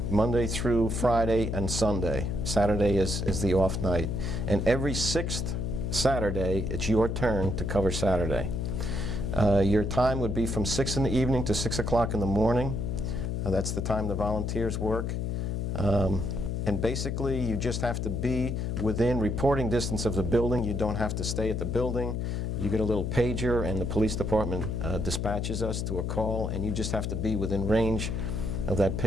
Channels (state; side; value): noise; left; hum, 1 dB below the sound